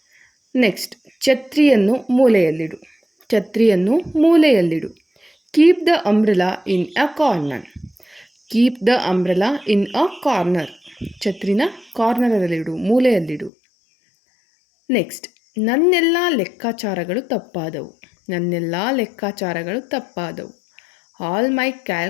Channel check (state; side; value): drops out; right; at 13.5 s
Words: ನೆಕ್ಸ್ಟ್, ಛತ್ರಿಯನ್ನು ಮೂಲೆಯಲ್ಲಿಡು. ಛತ್ರಿಯನ್ನು ಮೂಲೆಯಲ್ಲಿಡು. Keep the umbrella in a corner. Keep the umbrella in a corner. ಛತ್ರಿನ ಕಾರ್ನರಲ್ಲಿಡು, ಮೂಲೆಯಲ್ಲಿಡು. ನೆಕ್ಸ್ಟ್, ನನ್ನೆಲ್ಲ ಲೆಕ್ಕಾಚಾರಗಳು ತಪ್ಪಾದವು. ನನ್ನೆಲ್ಲ ಲೆಕ್ಕಾಚಾರಗಳು ತಪ್ಪಾದವು. All my